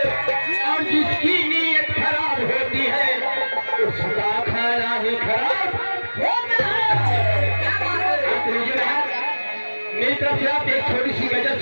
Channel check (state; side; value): inverted; both; correlation -1.00